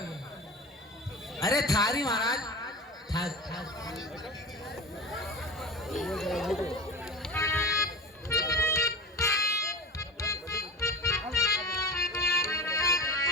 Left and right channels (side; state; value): both; normal; correlation 0.32